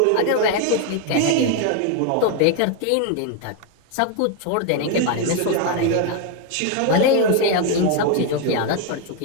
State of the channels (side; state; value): both; different; correlation 0.01